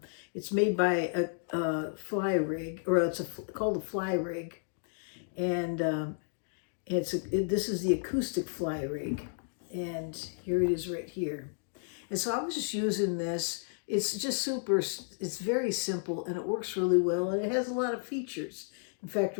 made by a FlyRig, or called a FlyRig, and this is the Acoustic FlyRig, and here it is right here. And so I was just using this. It's just it's very simple, and it works really well, and it has a lot of features. In fact,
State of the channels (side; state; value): right; silent; digital silence